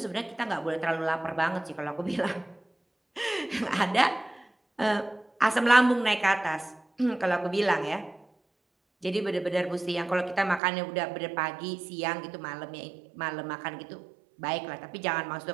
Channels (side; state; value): left; drops out; at 10.6 s